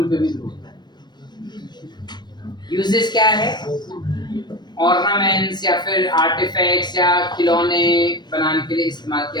पे भी ग्रो होता है। यूजेस क्या है, ऑर्नामेंट्स या फिर आर्टिफैक्ट्स या खिलौने बनाने के लिए इस्तेमाल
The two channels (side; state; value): right; late; 0.21 ms